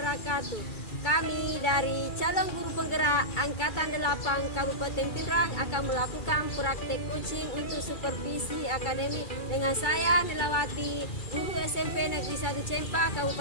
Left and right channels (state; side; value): late; right; 2.4 ms